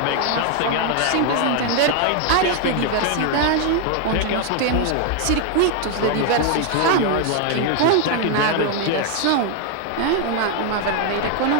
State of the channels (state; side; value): different; both; correlation 0.00